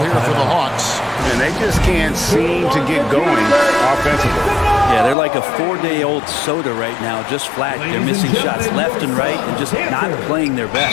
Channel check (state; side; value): drops out; right; at 5.2 s